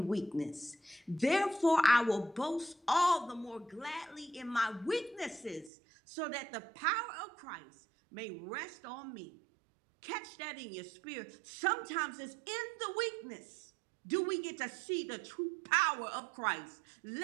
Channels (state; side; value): drops out; left; at 5.7 s